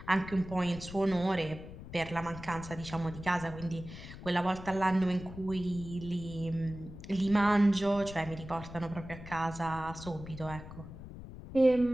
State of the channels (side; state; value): left; noise; rumble, 13 dB below the sound